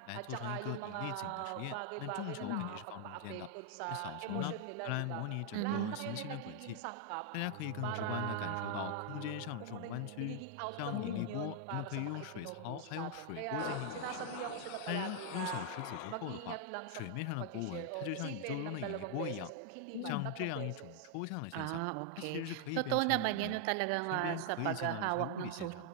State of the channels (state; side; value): different; both; correlation 0.00